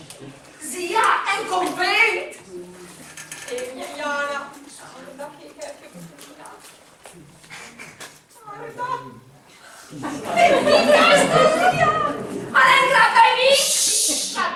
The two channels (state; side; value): identical; both; correlation 1.00